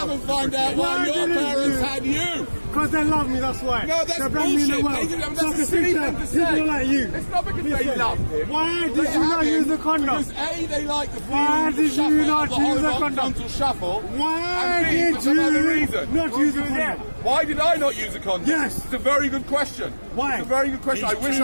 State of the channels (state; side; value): inverted; both; correlation -1.00